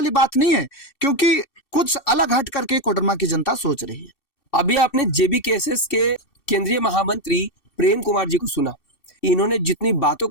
बात नहीं है, क्योंकि कुछ अलग हट करके कोडरमा की जनता सोच रही है। अभी आपने JBKSS के केंद्रीय महामंत्री प्रेम कुमार जी को सुना। इन्होंने जितनी बातों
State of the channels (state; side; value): late; right; 2.6 ms